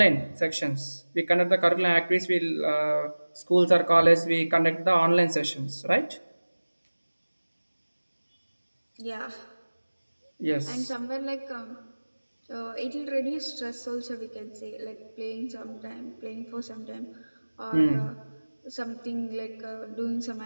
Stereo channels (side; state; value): both; inverted; correlation -1.00